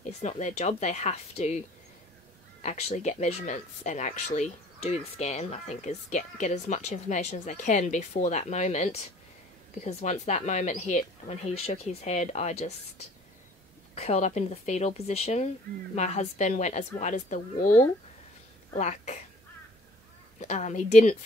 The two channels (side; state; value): both; normal; correlation 0.53